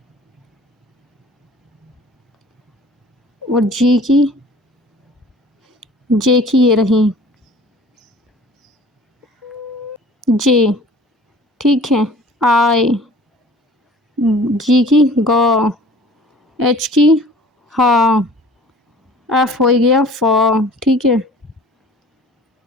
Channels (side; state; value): both; normal; correlation 0.47